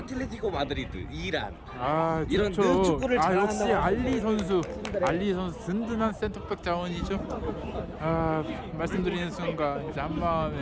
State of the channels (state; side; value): identical; both; correlation 1.00